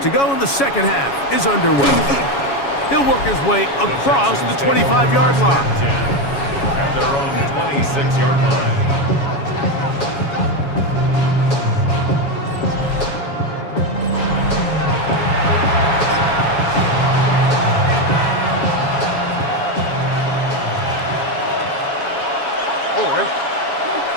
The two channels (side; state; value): right; late; 7.2 ms